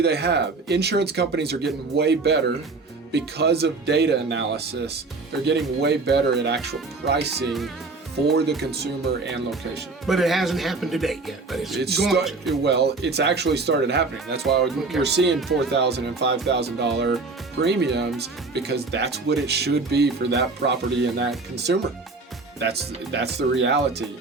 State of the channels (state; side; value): quieter; left; 3.8 dB